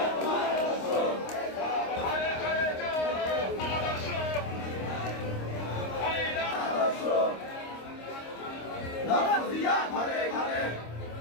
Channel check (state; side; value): late; right; 26 ms